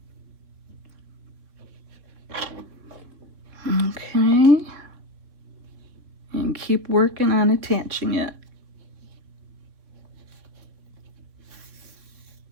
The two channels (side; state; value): left; late; 3.6 ms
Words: okay, and keep working on attaching it.